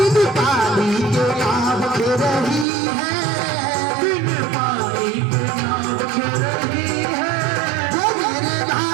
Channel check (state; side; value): drops out; left; at 2.7 s